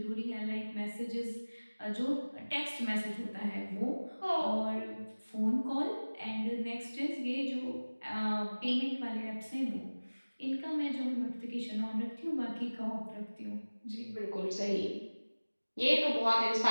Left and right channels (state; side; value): inverted; both; correlation -1.00